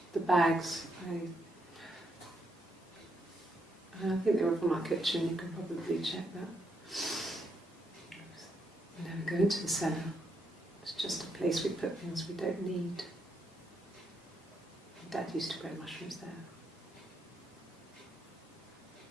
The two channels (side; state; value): both; normal; correlation 0.78